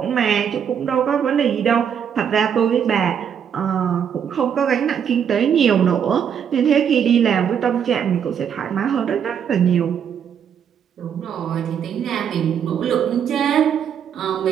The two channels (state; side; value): quieter; left; 8.1 dB